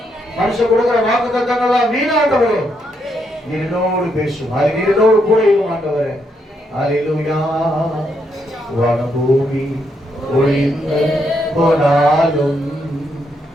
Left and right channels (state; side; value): normal; both; correlation 0.78